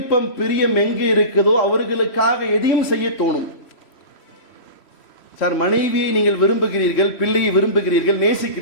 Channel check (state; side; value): late; right; 3.1 ms